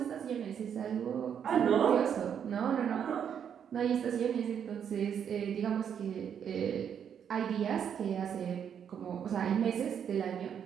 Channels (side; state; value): left; quieter; 8.2 dB